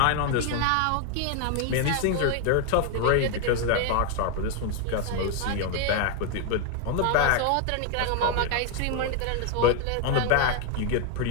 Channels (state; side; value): different; both; correlation 0.00